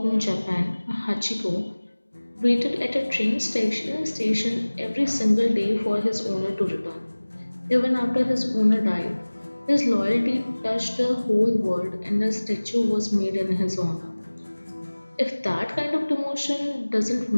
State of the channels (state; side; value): inverted; both; correlation -1.00